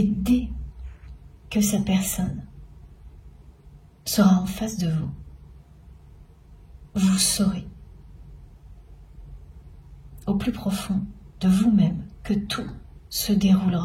dès que cette personne sera en face de vous, vous saurez au plus profond de vous-même que tout se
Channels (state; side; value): identical; both; correlation 1.00